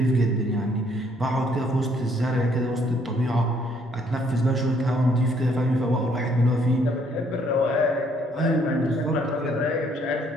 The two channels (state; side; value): normal; both; correlation 0.66